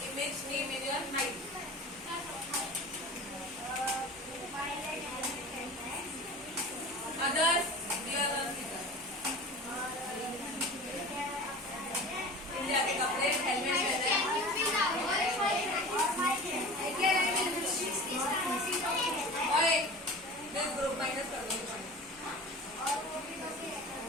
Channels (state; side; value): noise; left; hum, 28 dB below the sound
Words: image name in your mind? Others, dear Rosita. India के कपड़े, helmet और एक this group minus कर दो.